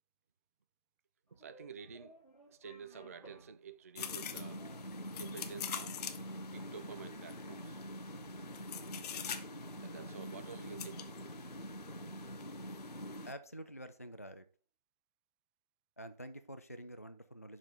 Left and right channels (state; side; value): inverted; both; correlation -0.38